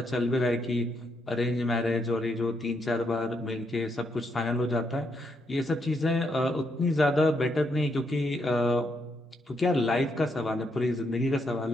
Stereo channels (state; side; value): normal; both; correlation 0.77